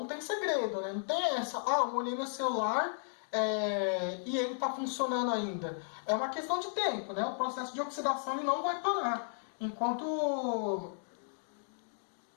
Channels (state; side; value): silent; right; digital silence